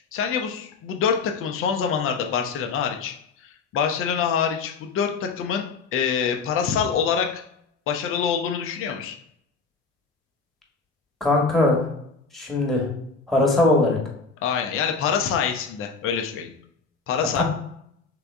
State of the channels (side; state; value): right; quieter; 4.6 dB